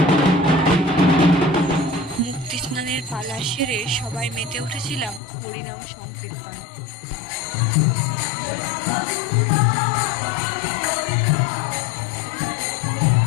সেরে সবাই মেতে উঠেছিলাম হরিনাম সংকীর্তন।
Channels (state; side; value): drops out; right; at 5.2 s